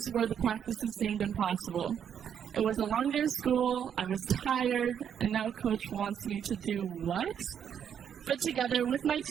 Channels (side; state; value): left; quieter; 8.5 dB